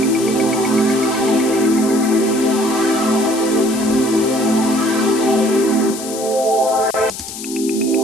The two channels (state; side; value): noise; left; hiss, 10 dB below the sound